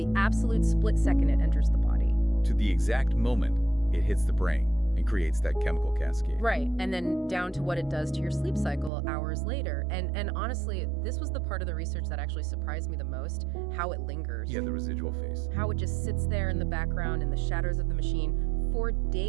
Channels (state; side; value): drops out; left; at 8.9 s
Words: absolute split second it enters the body to the exact moment it hits the brain and creates that chemical cascade. Right, and then down to what it does to your sleep cycle hours later. And honestly, this was the part of the research that actually surprised me the most, how it lingers. Yeah, the residual phase. How it just sits there in the background in the shadows of the machine for